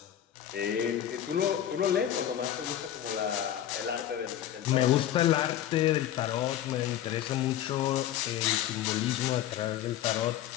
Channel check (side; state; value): right; quieter; 11.4 dB